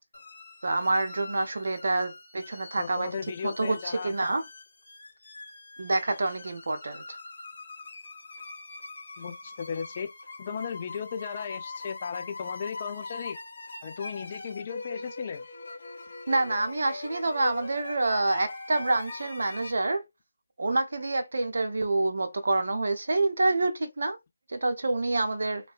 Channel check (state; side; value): inverted; both; correlation -0.93